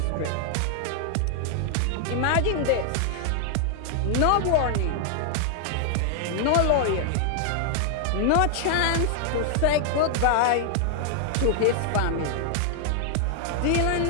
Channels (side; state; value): both; different; correlation 0.00